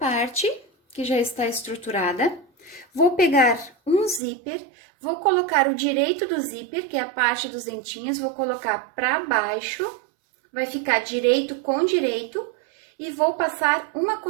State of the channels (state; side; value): drops out; left; at 4.2 s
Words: que já está estruturada, vou pegar um zíper, vou colocar o direito do zíper, que é a parte dos dentinhos, vou colocar para baixo, vai ficar direito com direito, e vou passar uma